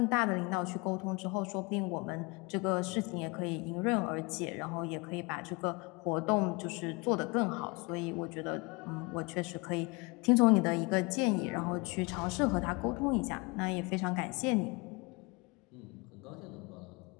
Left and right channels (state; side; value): quieter; right; 27.5 dB